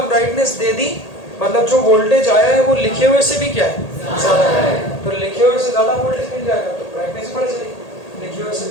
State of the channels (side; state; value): right; late; 1.8 ms